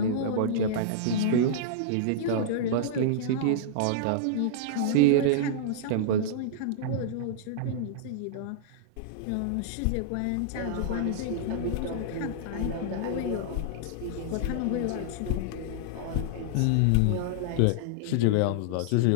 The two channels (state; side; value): different; both; correlation -0.02